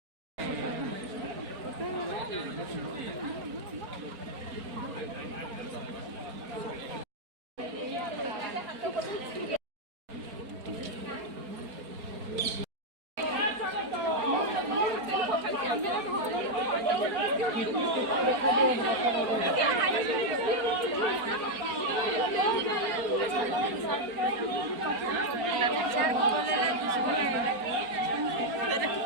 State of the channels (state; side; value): late; left; 4.3 ms